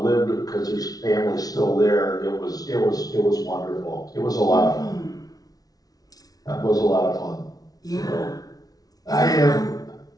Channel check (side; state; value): right; late; 0.18 ms